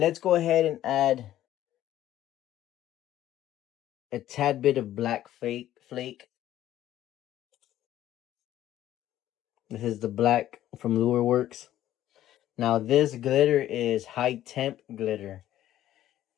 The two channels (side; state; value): right; quieter; 12.9 dB